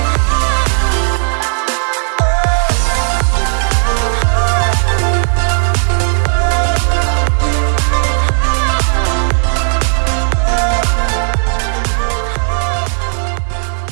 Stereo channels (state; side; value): silent; left; digital silence